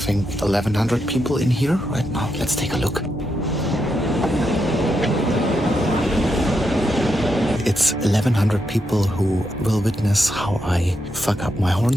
1,100 people in here right now. Let's take a look. It's 1,100 people who will witness how I fuck up my horn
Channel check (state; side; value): normal; both; correlation 0.83